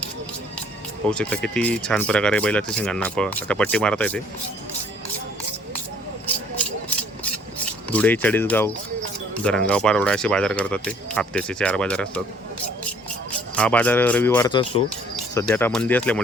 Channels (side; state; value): both; normal; correlation 0.58